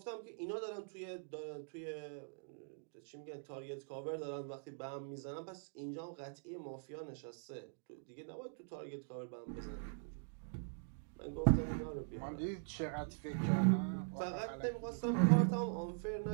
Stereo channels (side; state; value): left; silent; digital silence